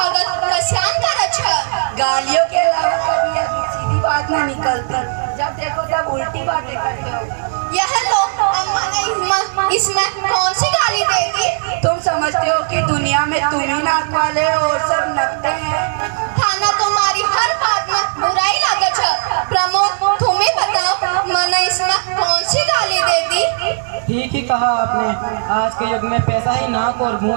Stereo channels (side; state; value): left; silent; digital silence